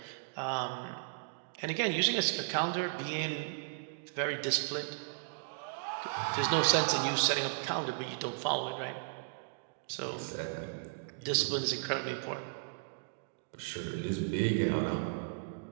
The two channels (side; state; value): left; silent; digital silence